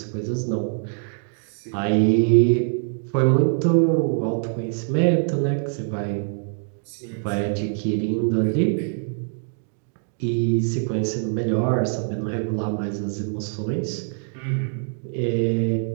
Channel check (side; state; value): left; silent; 63 dB below the other